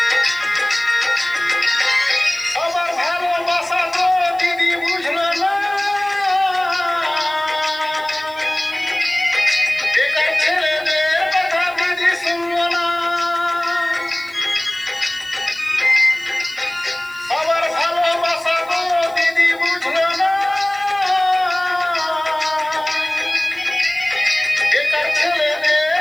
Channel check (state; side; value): noise; right; hiss, 25 dB below the sound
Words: সবার ভালোবাসা তো দিদি বুঝলো না, বেকার ছেলেদের কথা দিদি শুনলো না। সবার ভালোবাসা তো দিদি বুঝলো না, বেকার